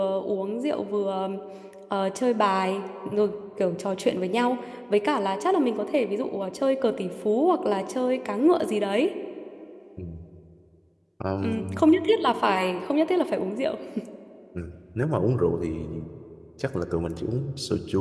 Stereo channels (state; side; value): identical; both; correlation 1.00